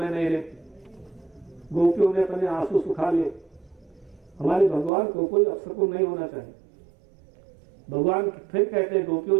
नहीं रहती। गोपियों ने अपने आंसू सुखा लिए। हमारे भगवान को कोई अवसर नहीं होना चाहिए। भगवान फिर कहते हैं गोपियों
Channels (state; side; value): drops out; left; at 4.9 s